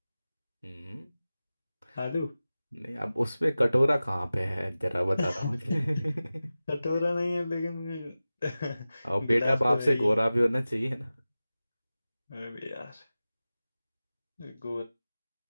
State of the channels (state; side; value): inverted; both; correlation -0.96